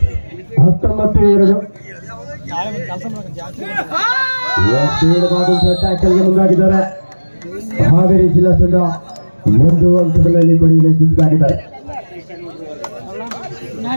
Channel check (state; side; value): inverted; both; correlation -1.00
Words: ಟ್ಯಾಕಲ್ಗೆ ಮುಂದಾಗಿದ್ದಾರೆ. ಹಾವೇರಿ ಜಿಲ್ಲಾ ತಂಡ 1 ಅಂಕದಲ್ಲಿ ಪಡೆಯಲು ಯಶಸ್ವಿಯಾಗಿದ್ದಾರೆ.